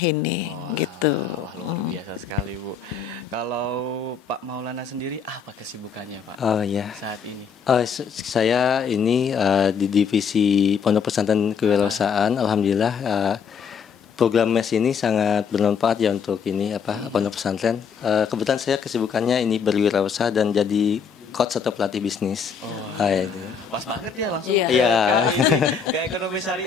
ini gitu. Wah, luar biasa sekali Bu. Kalau Pak Maulana sendiri apa kesibukannya Pak saat ini? Saya ini di Divisi Pondok Pesantren Kewirausahaan. Alhamdulillah program MES ini sangat bermanfaat ya untuk pondok pesantren. Kebetulan saya kesibukannya ini berwirausaha dan jadi coach atau pelatih bisnis. Pas banget ya langsung Iya. ke ekonomi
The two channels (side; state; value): right; quieter; 6.4 dB